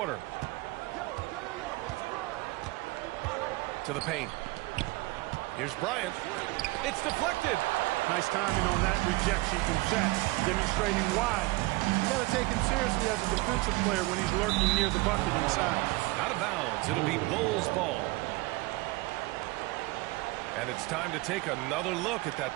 To the paint. Here's Bryant. It's deflected. Nice timing on that rejection from Shaq, demonstrating why. You got to take him seriously as a defensive player when he's lurking near the bucket inside. Out of bounds. It'll be Bulls ball. And it's time to take another look at that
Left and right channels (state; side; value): quieter; left; 22.3 dB